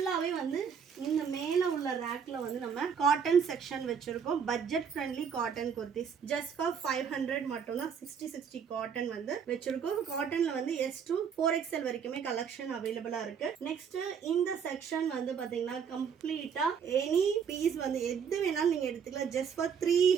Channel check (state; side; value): quieter; left; 7.0 dB